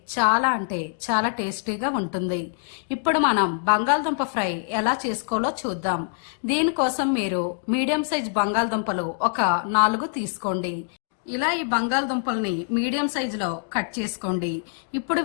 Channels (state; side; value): silent; right; digital silence